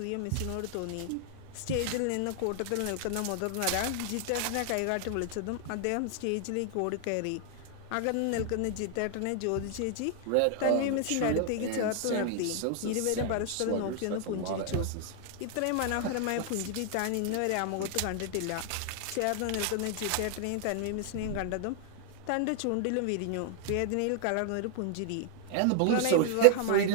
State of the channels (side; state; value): both; different; correlation 0.00